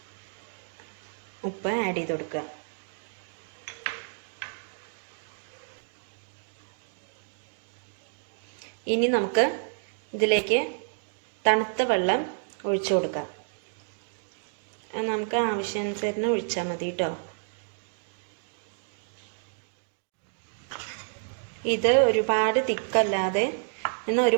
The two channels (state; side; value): silent; left; digital silence